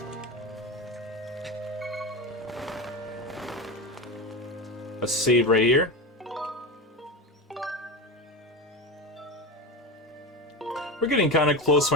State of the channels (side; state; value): both; normal; correlation 0.22